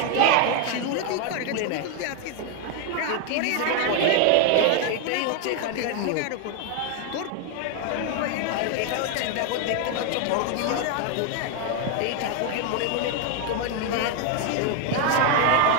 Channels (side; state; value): both; different; correlation 0.01